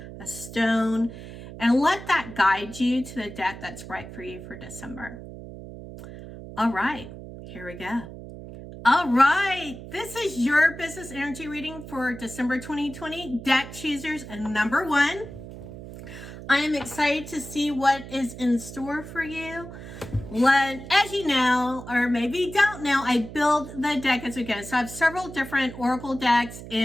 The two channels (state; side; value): noise; right; hum, 13 dB below the sound